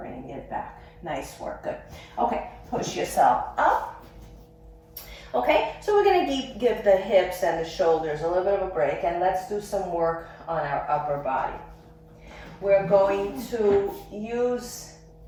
it back. Nice work, good. Okay, push yourself up. Okay, so we're going to give the hips and the shoulders a little bit of a break, and let's do some work on our upper body. We're going to use,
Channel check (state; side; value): identical; both; correlation 1.00